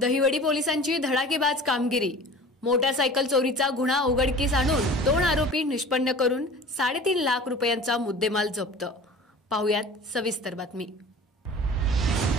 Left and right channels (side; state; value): both; normal; correlation 0.41